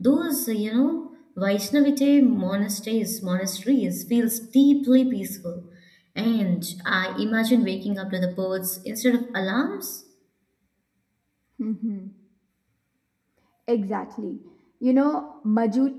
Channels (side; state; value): both; identical; correlation 1.00